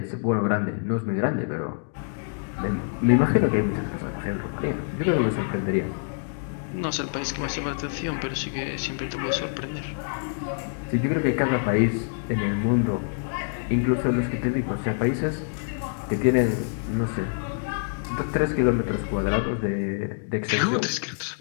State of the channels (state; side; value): silent; right; digital silence